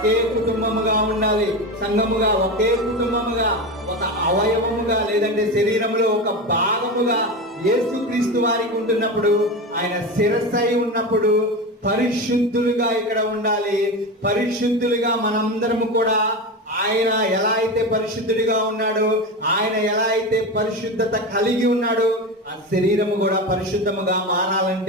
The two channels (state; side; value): normal; both; correlation 0.22